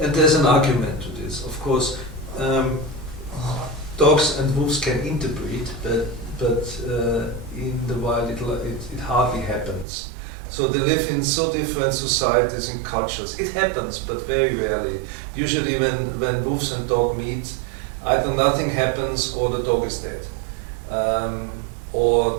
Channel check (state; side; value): drops out; left; at 9.9 s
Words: there's an argument to this. Of course, dogs and wolves can interbreed, but in the wild it hardly happens. So they live in so different societies and cultures. It happens, but very rarely. Usually when wolves and dog meet, either nothing happens or the dog is dead.